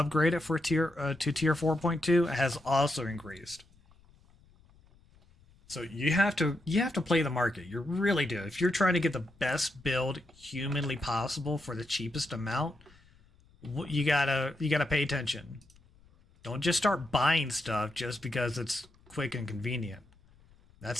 it for tier 4.2 has also increased. So you have to play the market. You really do. If you're trying to get the best build humanly possible for the cheapest amount, you gotta pay attention. Don't just start buying stuff just because it's quick and convenient. That's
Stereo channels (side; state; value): left; noise; rumble, 29 dB below the sound